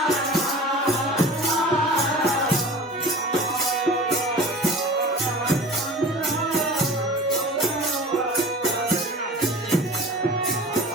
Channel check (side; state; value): both; normal; correlation 0.39